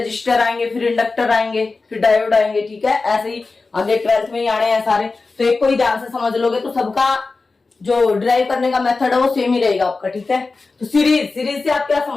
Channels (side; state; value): right; quieter; 3.9 dB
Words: आएंगे, फिर इंडक्टर आएंगे, फिर डायोड आएंगे, ठीक है, ऐसे ही आगे 12th में ही आने हैं सारे। तो एक को ही ध्यान से समझ लोगे तो सबका जो ड्राइव करने का मेथड है वो सेम ही रहेगा आपका, ठीक है। तो सीरीज से आप क्या